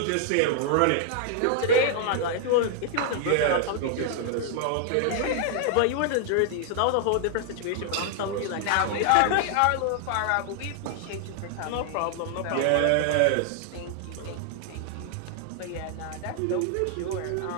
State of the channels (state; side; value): different; both; correlation 0.00